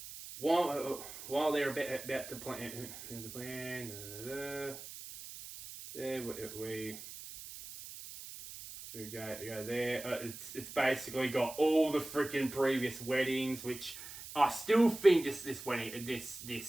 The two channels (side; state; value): right; noise; hiss, 12 dB below the sound